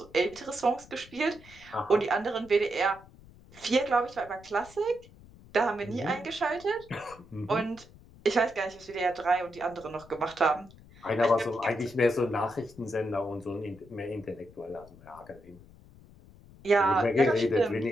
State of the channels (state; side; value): noise; left; rumble, 22 dB below the sound